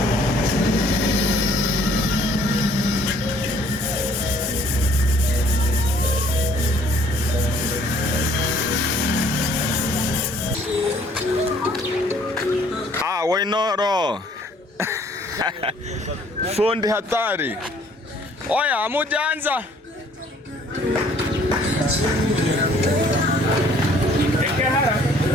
Wainoro. Fundi hatari. Oya, hamujaanza.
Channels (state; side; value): normal; both; correlation 0.59